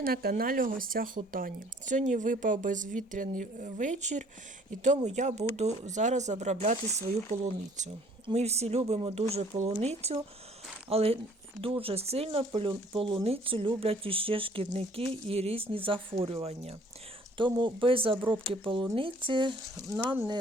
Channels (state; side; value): normal; both; correlation 0.57